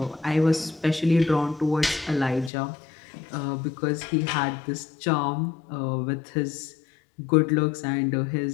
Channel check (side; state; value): right; drops out; at 2.5 s